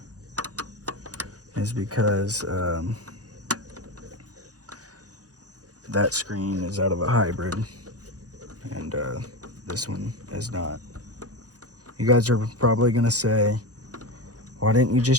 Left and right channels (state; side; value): late; left; 0.67 ms